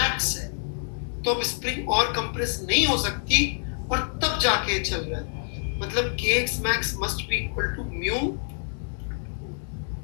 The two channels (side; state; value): right; silent; 60 dB below the other